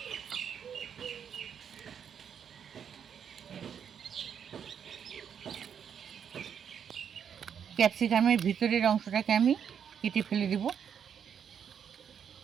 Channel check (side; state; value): left; quieter; 7.9 dB